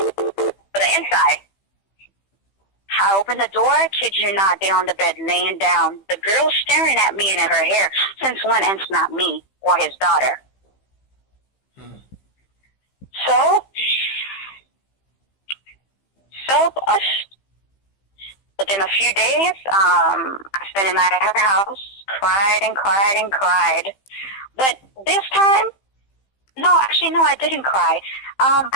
the inside. I opened the door, kid you not, they're on the bed laying down. The girl staring at me and at her hair. Since when? And it's not me or his daughter. So within a few days, I spent the night at her house, cried and cried and cried. But this time, no, I didn't cry. I'm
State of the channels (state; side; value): late; right; 15 ms